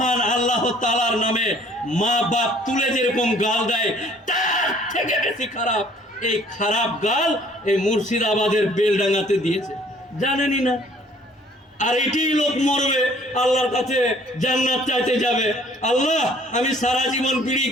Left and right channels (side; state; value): both; normal; correlation 0.57